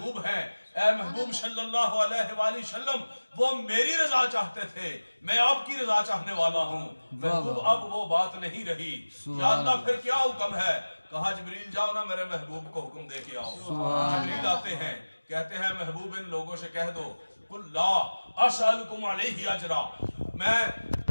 ہیں، اے محبوب صلی اللہ علیہ وآلہ وسلم وہ میری رضا چاہتے تھے، میں آپ کی رضا چاہنے والا ہوں۔ محبوب اب وہ بات نہیں رہی، یا اللہ پھر کیا حکم ہے؟ کہا جبریل جاؤ نا میرے محبوب کو حکم دے کے آؤ۔ جبریل آتے ہیں، کہتے ہیں محبوب ان لوگوں سے کہہ دو قل لا اسألکم علیہ اجرا، میں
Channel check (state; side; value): inverted; both; correlation -1.00